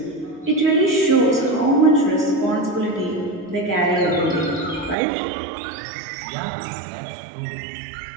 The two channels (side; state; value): left; drops out; at 5.0 s